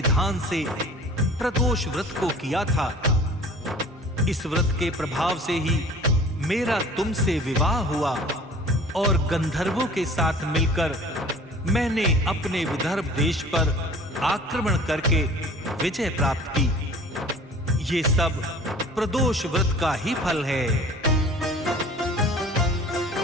से प्रदोष व्रत को किया था। इस व्रत के प्रभाव से ही मेरा तुमसे विवाह हुआ और गंधर्वों के साथ मिलकर मैंने अपने विदर्भ देश पर आक्रमण करके विजय प्राप्त की। ये सब प्रदोष व्रत का ही फल है।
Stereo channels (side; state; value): both; normal; correlation 0.47